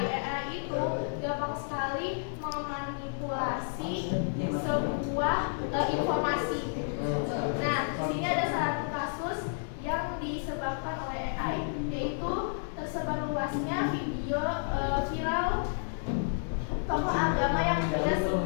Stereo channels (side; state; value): right; silent; 57 dB below the other